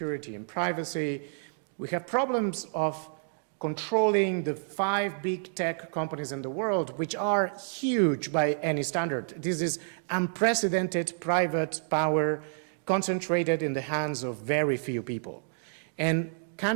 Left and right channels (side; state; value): left; silent; digital silence